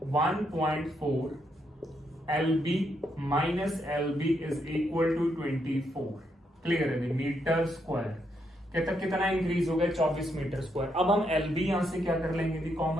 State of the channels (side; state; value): both; normal; correlation 0.78